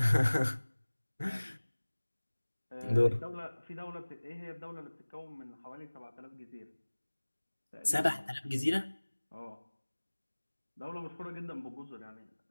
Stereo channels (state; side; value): inverted; both; correlation -1.00